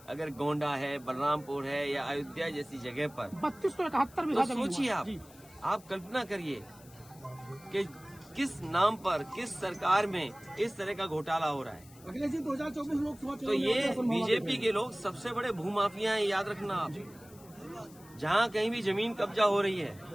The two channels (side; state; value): left; noise; hiss, 23 dB below the sound